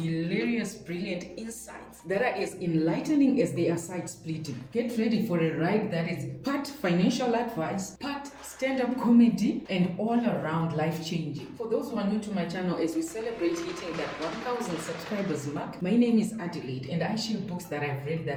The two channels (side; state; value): both; identical; correlation 1.00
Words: brilliant insights that are as enlightening as they are side-splitting. Get ready for a ride that is part financial advice, part stand-up comedy, and all-around life-changing. For those who are new to my channel, as we celebrate hitting that 1,000 subscribers mark, my name is Adelaide, and I share books that I've read that